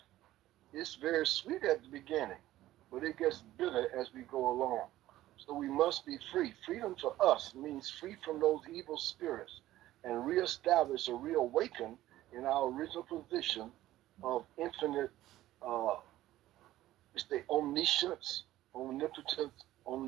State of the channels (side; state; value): left; quieter; 14.9 dB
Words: it's very sweet at the beginning, but it gets bitter as we go along. So we must be free. Freedom for us means free from those evil spirits and reestablish or reawaken in our original position of infinite, uh, it's the omniscience, omnipotence,